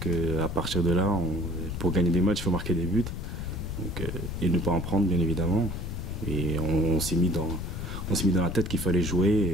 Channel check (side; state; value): left; noise; rumble, 6 dB below the sound